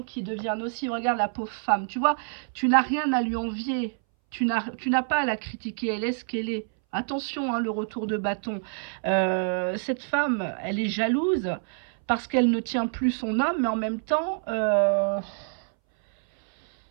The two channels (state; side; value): silent; left; 60 dB below the other